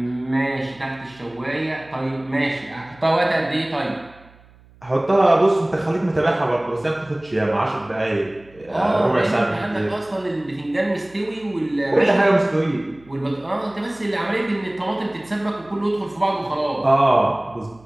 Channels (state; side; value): noise; right; hum, 26 dB below the sound